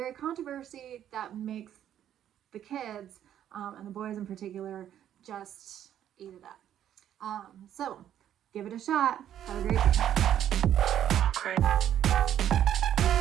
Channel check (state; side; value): quieter; left; 10.6 dB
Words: controversy that makes the kids, and the boys in particular, just eat it up. So give it a shot. Have a great